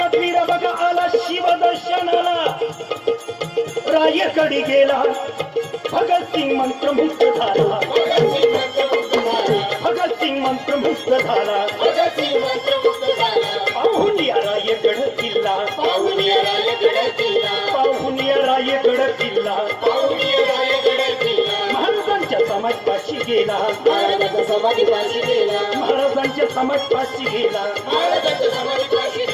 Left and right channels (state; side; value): identical; both; correlation 1.00